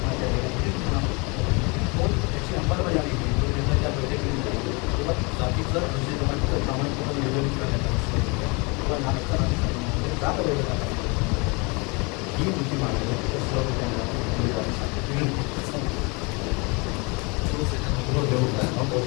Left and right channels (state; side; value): quieter; right; 29.5 dB